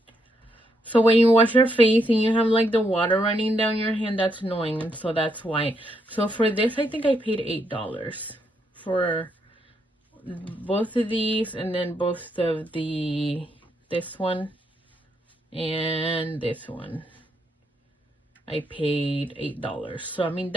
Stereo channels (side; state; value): both; normal; correlation 0.77